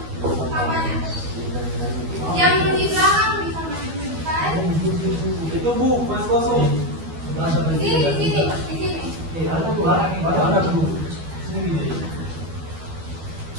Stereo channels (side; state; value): left; late; 12 ms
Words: sampahnya. Yang di belakang bisa menunjukkan. Itu Bu, mas kosong. Di sini. Ada Bu, ada Bu. Sini gini.